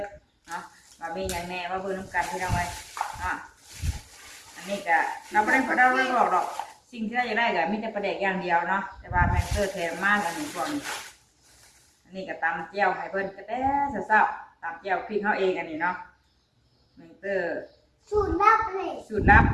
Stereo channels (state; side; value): identical; both; correlation 1.00